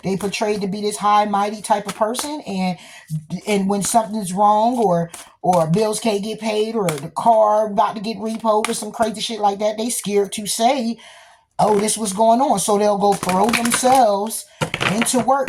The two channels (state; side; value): identical; both; correlation 1.00